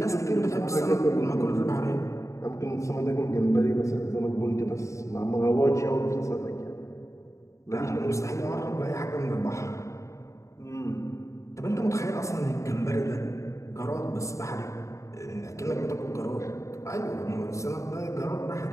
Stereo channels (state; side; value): late; right; 0.15 ms